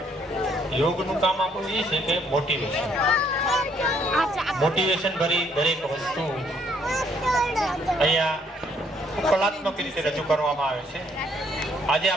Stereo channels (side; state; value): both; normal; correlation 0.67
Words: યોગનું કામ આપણું એ છે કે મોટિવેશન ભરી દરેક વસ્તુ અહીંયા કલાત્મક રીતે રજૂ કરવામાં આવે છે। આજે